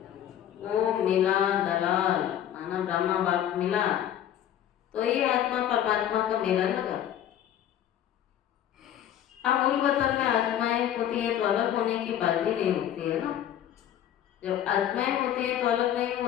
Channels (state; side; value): quieter; right; 10.8 dB